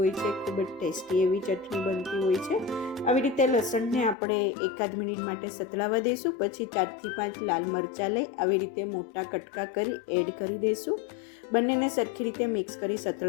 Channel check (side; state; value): right; drops out; at 4.2 s